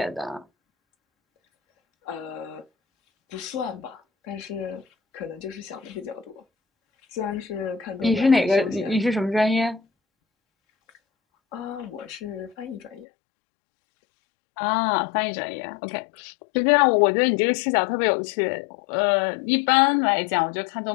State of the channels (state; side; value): drops out; right; at 13.1 s